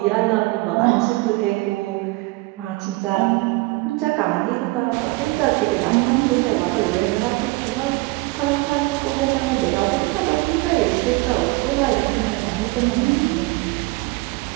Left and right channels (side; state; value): left; quieter; 22.8 dB